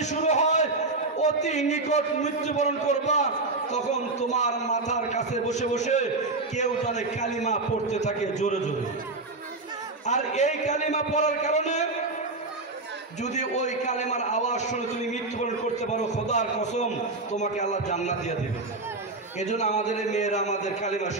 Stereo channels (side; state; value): left; quieter; 3.3 dB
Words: শুরু হয়, অতি নিকট মৃত্যুবরণ করবা, তখন তোমার মাথার কাছে বসে বসে কেউ জানে কালিমা পড়তে থাকে জোরে জোরে। আর এই কালিমা পড়ার কারণে যদি ওই কালেমার আওয়াজ শুনে তুমি মৃত্যুবরণ করতে পারো, খোদার কসম তোমাকে আল্লাহ জান্নাত দিয়ে দেবে। এজন্য আমাদের মেয়েরা আমাদের কালিমা